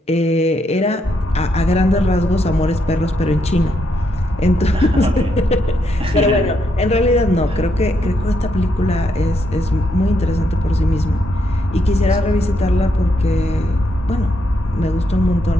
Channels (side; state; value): both; normal; correlation 0.78